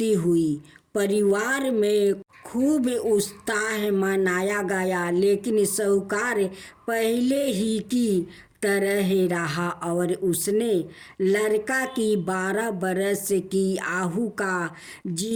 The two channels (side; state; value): both; identical; correlation 1.00